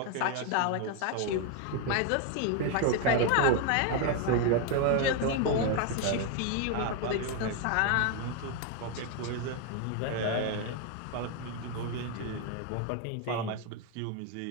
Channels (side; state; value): both; different; correlation 0.01